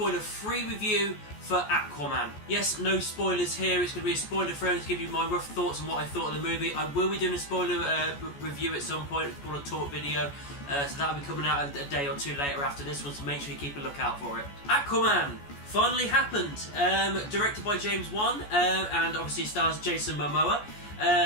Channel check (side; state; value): right; late; 14 ms